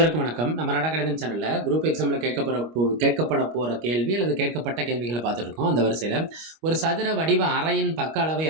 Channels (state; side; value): late; left; 25 ms